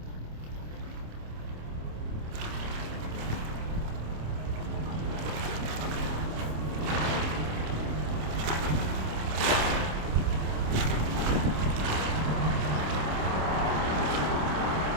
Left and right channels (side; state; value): left; late; 27 ms